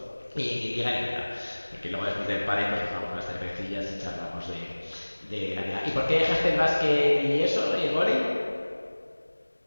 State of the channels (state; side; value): inverted; both; correlation -1.00